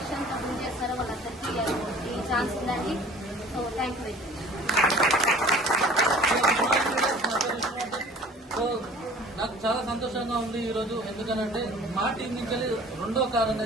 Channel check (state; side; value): normal; both; correlation 0.47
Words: బిల్డ్ చేస్తారో వాళ్ళందరికీ ఈ ఛాన్స్ ఉందండి. So thank you. సో నాకు చాలా సంతోషంగా ఉంది ఈరోజు. ఎందుకనంటే మా టీం నుంచి రెండో కార్